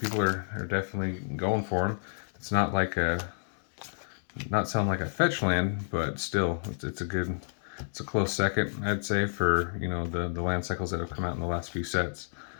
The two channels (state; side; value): silent; right; digital silence